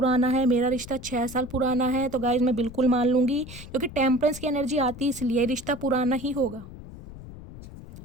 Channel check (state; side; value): noise; left; rumble, 15 dB below the sound